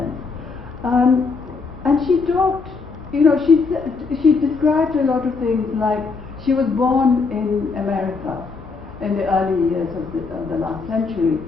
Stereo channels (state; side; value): quieter; right; 4.5 dB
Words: And she talked, she described a lot of things, like she was born in America in the early years of the last century,